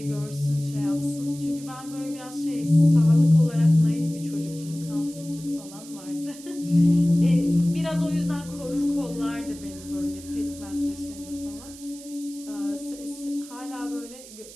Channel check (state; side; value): noise; right; hiss, 17 dB below the sound